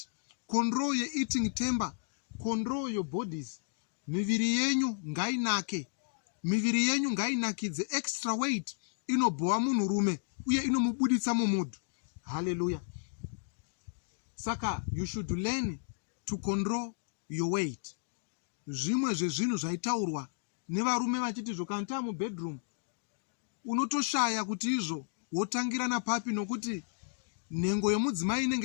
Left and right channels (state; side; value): silent; right; digital silence